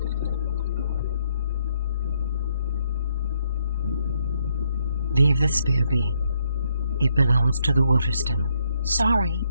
Leave the spear be. It belongs to the waterstiler. Sorry.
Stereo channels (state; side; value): inverted; both; correlation -0.73